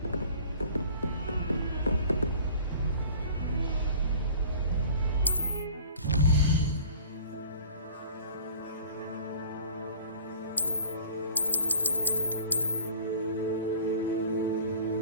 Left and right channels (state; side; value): inverted; both; correlation -0.45